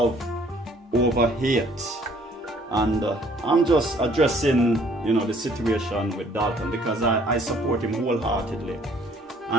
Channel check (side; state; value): both; normal; correlation 0.59